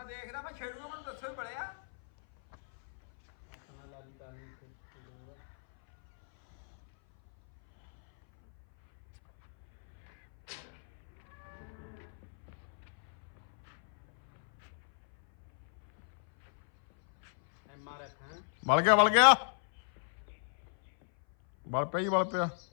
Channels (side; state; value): right; silent; 56 dB below the other